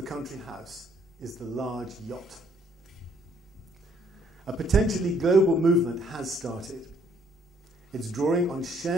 country house is the large yacht. A potentially global movement has started. It's drawing on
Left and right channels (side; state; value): both; normal; correlation 0.65